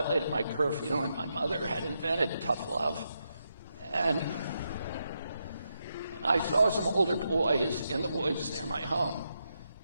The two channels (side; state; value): both; inverted; correlation -0.83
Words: my curfew, and my mother had invented tough love. And I saw some older boys in the woods near my home.